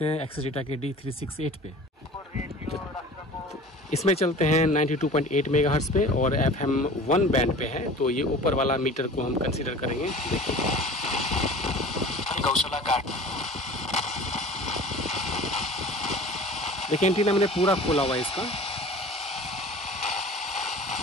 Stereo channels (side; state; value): both; normal; correlation 0.41